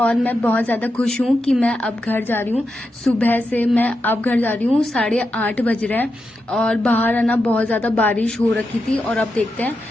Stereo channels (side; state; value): both; normal; correlation 0.87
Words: मैं बहुत ज़्यादा खुश हूँ कि मैं अब घर जा रही हूँ। सुबह से मैं अब घर जा रही हूँ, 8:30 बज रहे हैं और बाहर है ना बहुत ज़्यादा बारिश हो रखी थी और अब देखते हैं